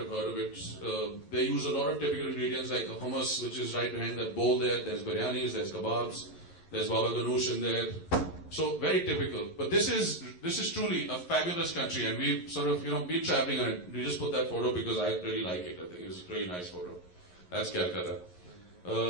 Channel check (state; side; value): late; right; 11 ms